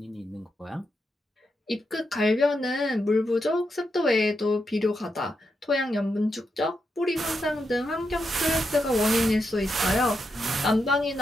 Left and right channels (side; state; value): both; normal; correlation 0.84